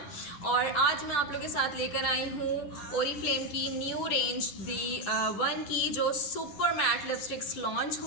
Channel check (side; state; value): right; late; 10 ms